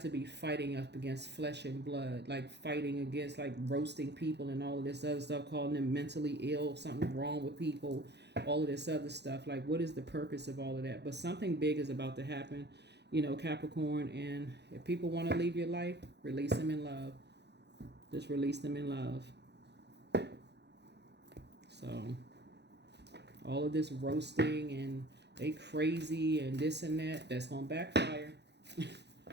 be fighting up against flesh and blood, like fighting against, like roasting people and all of this other stuff, calling them mentally ill, something wrong with people, all of this other stuff. Like, what is the purpose of all of that? But something big is about to happen, Capricorn. And if people want to leave your life, release them in love. Just release them in love. So all of this roasting and they crazy and this and that's going to backfire.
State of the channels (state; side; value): late; left; 0.50 ms